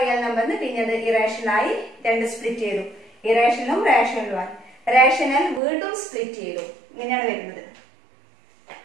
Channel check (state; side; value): drops out; left; at 5.6 s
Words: നമ്പറിന് പിന്നെ അത് ഇറേഷണലായി രണ്ട് സ്പ്ലിറ്റ് ചെയ്തു, ഇറേഷണലും റേഷണലുമായി. റേഷണൽ വീണ്ടും സ്പ്ലിറ്റ് ചെയ്തു. ഇങ്ങനെയാണ് വരുന്നത്